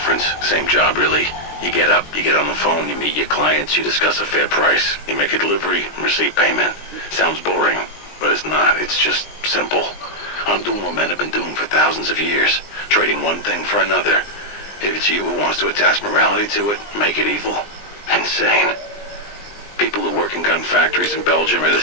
Same job, really. You get up, you get on the phone, you meet your clients, you discuss a fair price. You make a delivery, receive payment. Sounds boring, but it's not. It's just simple. I'm doing what men have been doing for thousands of years, trading one thing for another. If it's you who wants to attach morality to it, make it evil. Insane. People who work in gun factories in Belgium or the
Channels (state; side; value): late; right; 20 ms